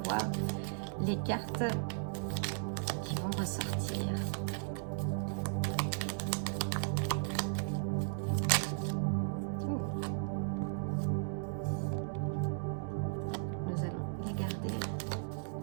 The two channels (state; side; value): silent; left; digital silence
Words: voir les cartes ressortir. Nous allons les garder.